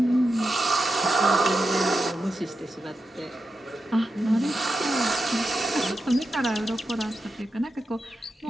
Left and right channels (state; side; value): normal; both; correlation 0.89